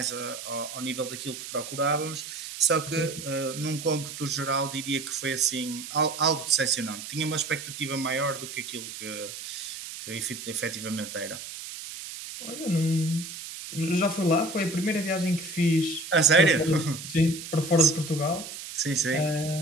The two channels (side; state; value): right; noise; hiss, 10 dB below the sound